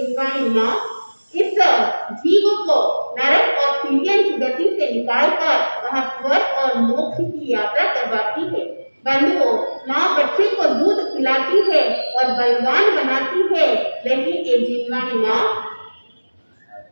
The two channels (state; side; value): inverted; both; correlation -1.00